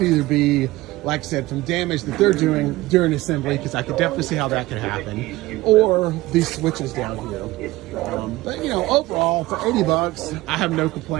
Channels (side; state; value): left; quieter; 18.7 dB